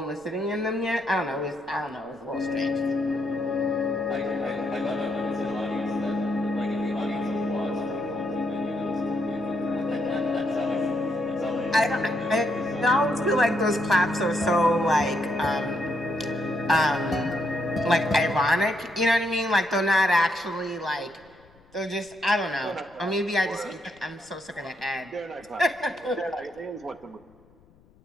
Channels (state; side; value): noise; left; rumble, 29 dB below the sound